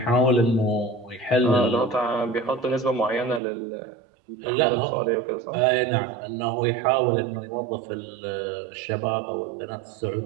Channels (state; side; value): drops out; left; at 3.4 s